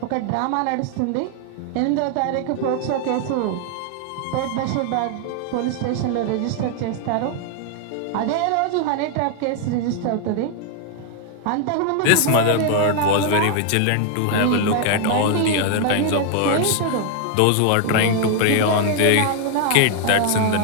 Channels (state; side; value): different; both; correlation 0.00